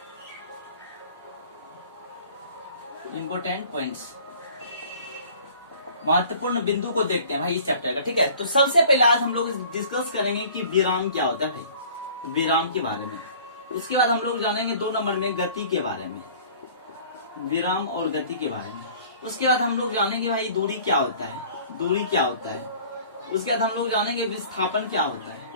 महत्वपूर्ण बिंदु को देखते हैं भाई इस चैप्टर का, ठीक है। तो सबसे पहले आज हम लोग डिस्कस करेंगे कि विराम क्या होता है भाई, विराम के बारे में। उसके बाद हम लोग जानेंगे 2 नंबर में गति के बारे में, विराम और गति के बारे में। उसके बाद हम लोग जानेंगे भाई दूरी क्या होता है, दूरी क्या होता है। उसके बाद हम लोग जानेंगे विस्थापन क्या होता है,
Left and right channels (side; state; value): both; inverted; correlation -0.49